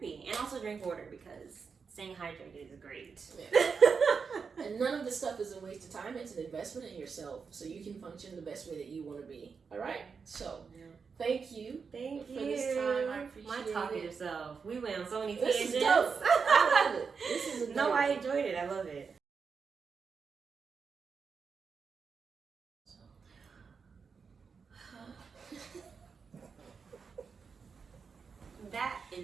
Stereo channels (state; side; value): quieter; left; 5.5 dB